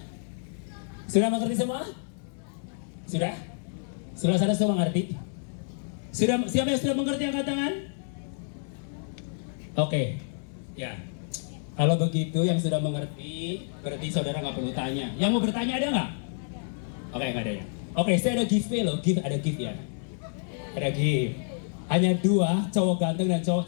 Sudah mengerti semua? Sudah? Sebelah sana so mengerti? Sudah, siapa yang sudah mengerti angkat tangan? Oke, ya. Kalau begitu yang sudah mengerti, berarti saudara nggak perlu tanya. Yang mau bertanya ada nggak? Oke, nggak ada ya. Oke, saya ada giveaway loh, ada gift ya. Ada gift. Hanya 2 cowok ganteng dan cowok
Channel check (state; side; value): silent; right; digital silence